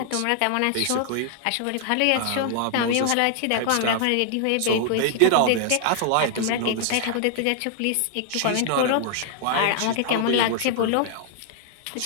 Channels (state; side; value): different; both; correlation 0.00